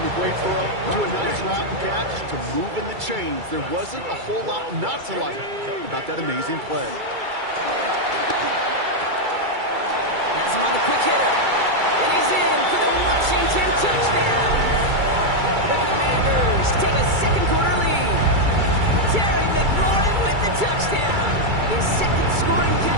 a great throw to a nice route and catch to moving the chains. There wasn't a whole lot not to like about that amazing play. Has him on the quick hitter. And he's in for the Washington touchdown. The Commanders take a second quarter lead. Terry McLaurin with the touchdown. His second scoring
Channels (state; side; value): late; left; 2.3 ms